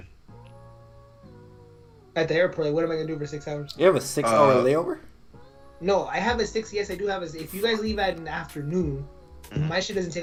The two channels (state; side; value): identical; both; correlation 1.00